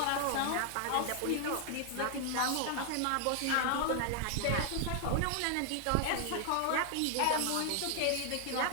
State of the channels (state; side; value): different; both; correlation 0.00